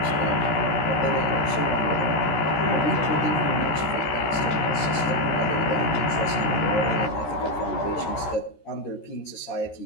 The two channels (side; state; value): right; late; 13 ms